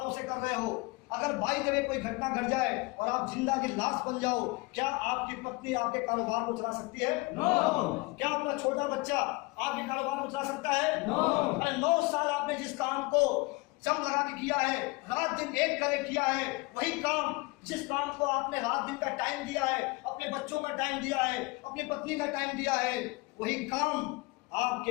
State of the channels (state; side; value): quieter; right; 24.9 dB